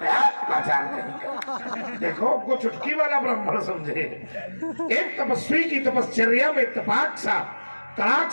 है। आचार कहीं देखो, हमको चुटकी वाला ब्राह्मण समझे। एक तपस्वी की तपश्चर्या में तपाक सा तड़ाक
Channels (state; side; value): inverted; both; correlation -1.00